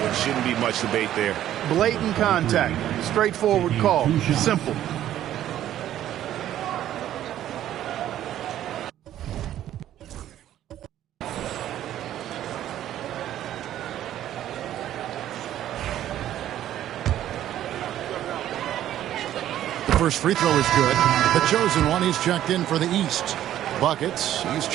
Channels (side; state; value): left; quieter; 12.1 dB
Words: Shouldn't be much debate there. Blatant contact. Straightforward call. Simple. First free throw is good. The chosen one, he's checked in for the East. Buckets, he's